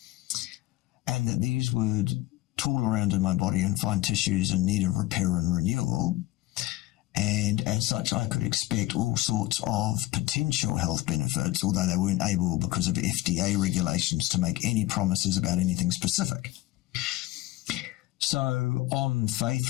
and that these would tool around in my body and find tissues in need of repair and renewal. And as such, I could expect all sorts of potential health benefits, although they weren't able, because of FDA regulations, to make any promises about anything specific. So on faith,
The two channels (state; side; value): quieter; right; 17.2 dB